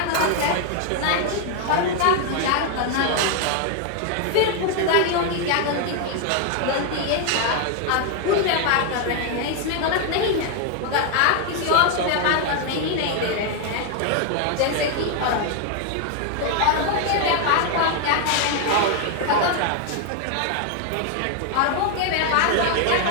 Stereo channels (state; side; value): different; both; correlation 0.00